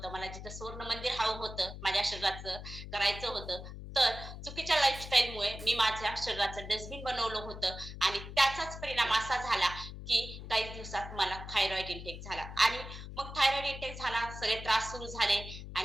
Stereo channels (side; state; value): left; noise; hum, 11 dB below the sound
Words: मला जिथं स्वर्ण मंदिर हवं होतं, माझ्या शरीराचं करायचं होतं, तर चुकीच्या लाईफस्टाईलमुळे मी माझ्या शरीराचं डस्टबिन बनवलं होतं. आणि त्याचाच परिणाम असा झाला की काही दिवसात मला थायरॉइड इंटेक झाला. आणि मग थायरॉइड इंटेक झाला, सगळे त्रास सुरू झाले.